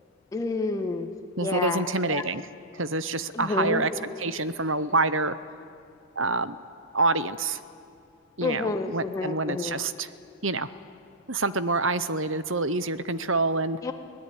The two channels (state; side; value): normal; both; correlation -0.12